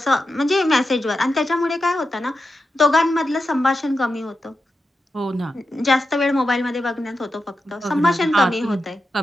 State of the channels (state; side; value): normal; both; correlation 0.89